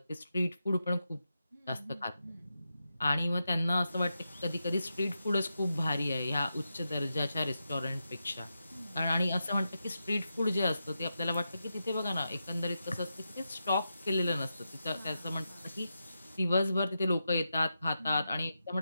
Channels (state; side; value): inverted; both; correlation -0.88